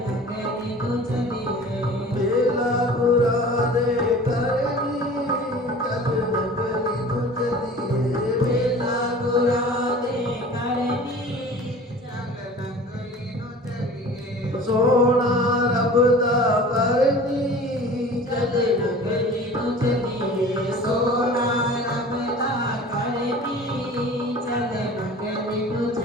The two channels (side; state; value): both; normal; correlation 0.42